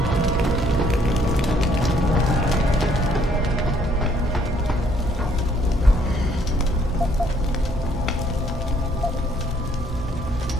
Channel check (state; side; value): normal; both; correlation 0.65